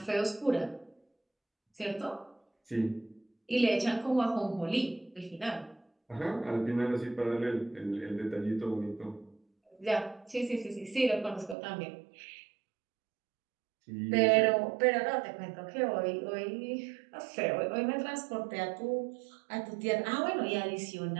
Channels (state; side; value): drops out; left; at 11.6 s